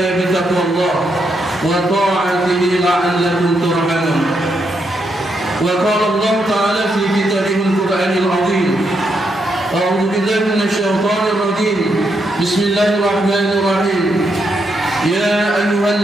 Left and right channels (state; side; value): normal; both; correlation 0.80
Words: bi taqwallah wa ta'atihi la'allakum turhamun. Wa qala Allah ta'ala fi kitabihil Qur'anil 'azim. أعوذ بالله من الشيطان الرجيم. Bismillahirrahmanirrahim. Ya